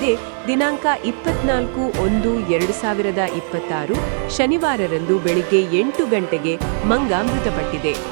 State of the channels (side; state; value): left; silent; 66 dB below the other